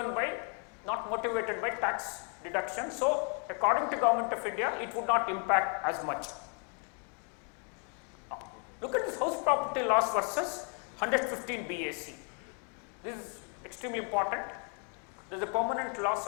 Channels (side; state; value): right; quieter; 39.2 dB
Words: by, not motivated by tax deduction. So according to Government of India, it would not impact as much. Look at this house property loss versus 115 BAC. This is extremely important. There is a permanent loss